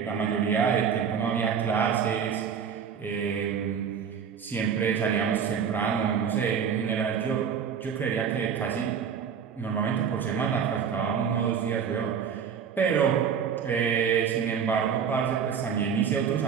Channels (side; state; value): left; quieter; 7.2 dB